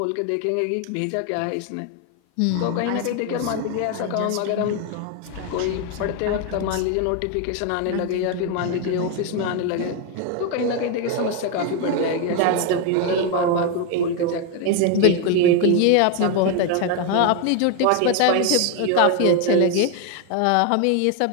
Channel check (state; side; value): different; both; correlation 0.01